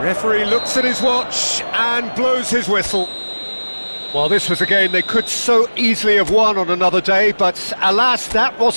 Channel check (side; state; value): both; inverted; correlation -1.00